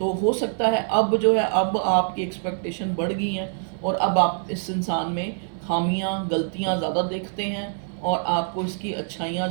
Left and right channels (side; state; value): left; silent; digital silence